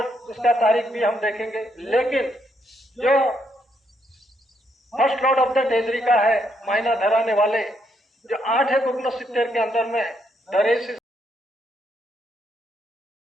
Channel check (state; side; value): normal; both; correlation 0.76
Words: उसका तारीख भी हम देखेंगे। लेकिन जो first lord of the treasury का है, मायना धराने वाले जो 8/69 के अंदर में दरेश